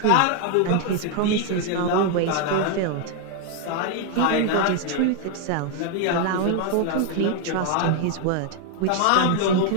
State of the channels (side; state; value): both; different; correlation 0.00